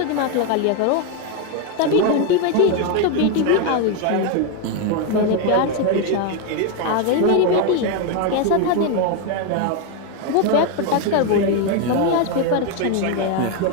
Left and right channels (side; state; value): both; different; correlation 0.01